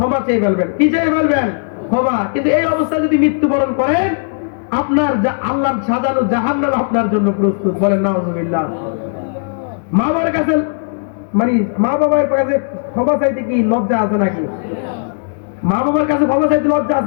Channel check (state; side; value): silent; right; digital silence